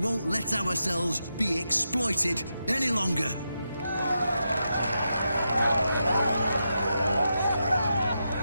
let ourselves be exploited any longer.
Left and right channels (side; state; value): both; inverted; correlation -0.86